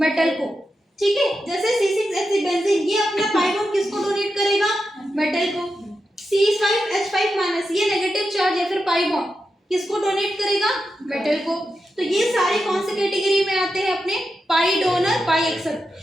मेटल को। ठीक है, जैसे C6H6 बेंजीन, ये अपना पाई बॉन्ड किसको डोनेट करेगा? मेटल को। C5H5- ये नेगेटिव चार्ज या फिर पाई बॉन्ड किसको डोनेट करेगा? मेटल को। तो ये सारे कौन से कैटेगरी में आते हैं? अपने पाई डोनर पाई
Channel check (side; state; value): both; normal; correlation 0.88